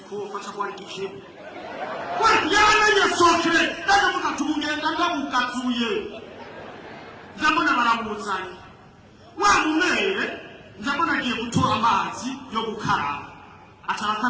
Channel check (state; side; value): identical; both; correlation 1.00